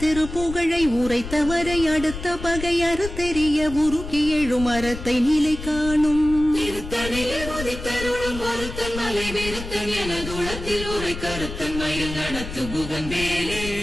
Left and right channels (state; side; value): noise; left; rumble, 9 dB below the sound